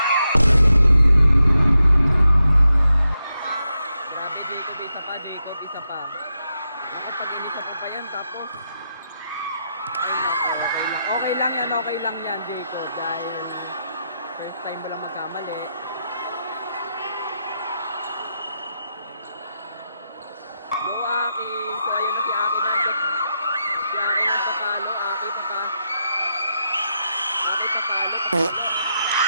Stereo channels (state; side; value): inverted; both; correlation -0.85